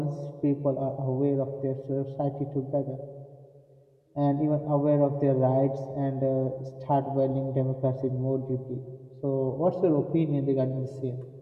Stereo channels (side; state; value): both; identical; correlation 1.00